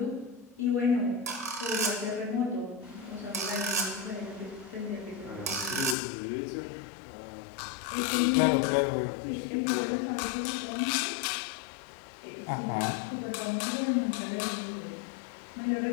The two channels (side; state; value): right; drops out; at 6.0 s